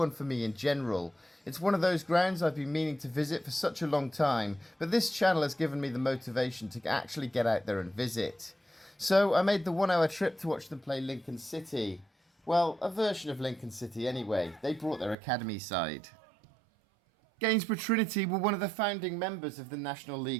for me in general. It's one of those grounds I've been meaning to visit for such a long time, but this channel has given me the motivation to actually get out there and visit. So I made the 1-hour trip to watch them play Lincoln City. Well, a version of Lincoln City anyway. They brought their academy side. Gainsborough Trinity were one of the founding members of the National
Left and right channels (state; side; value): drops out; left; at 15.2 s